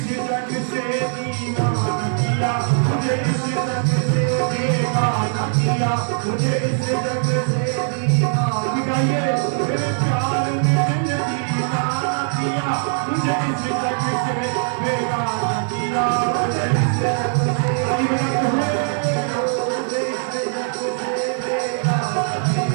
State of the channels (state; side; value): silent; left; digital silence